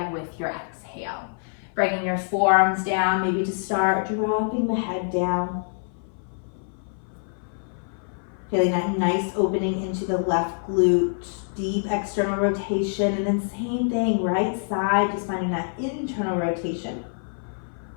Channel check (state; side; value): silent; right; 57 dB below the other